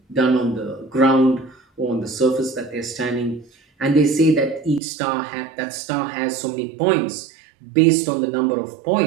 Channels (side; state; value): left; drops out; at 4.8 s